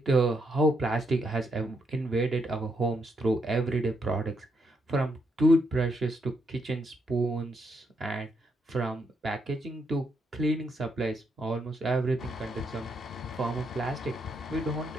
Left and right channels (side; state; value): both; normal; correlation 0.78